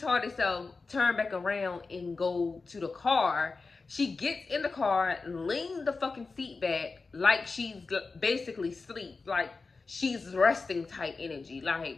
self turn back around and go to the car. She gets in the car, lean the fucking seat back like she's basically asleep. Like she's resting type energy.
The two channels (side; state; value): right; quieter; 4.1 dB